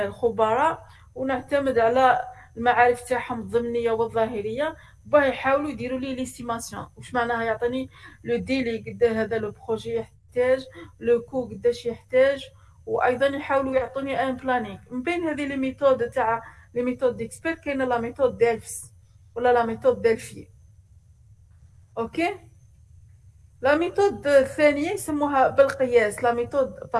ونعتمد على المعارف تاعهم الضمنية والظاهرية باه يحاولوا يديروا لي ليستيماسيون. واش معناها؟ يعطيني لو ديلي قد هذا لو بروجي يحتاج، لو كو قداش يحتاج، وايضا يحاولوا يعطوني ان بلانينغ. من بين هذه لي ميثود تاع لي ميثود ديكسبيرت كاينه لا ميثود ديلفس ولا لا ميثود ديلفي. اوكي. لا ميثود الثانيه يسموها بالقياس، لا ميثود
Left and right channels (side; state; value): both; identical; correlation 1.00